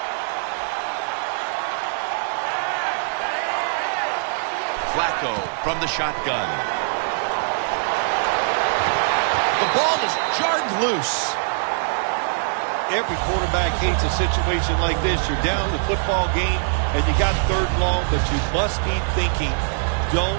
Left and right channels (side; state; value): left; silent; 64 dB below the other